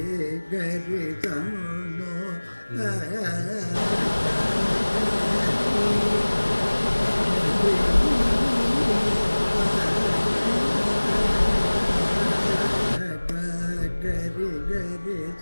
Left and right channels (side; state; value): both; inverted; correlation -1.00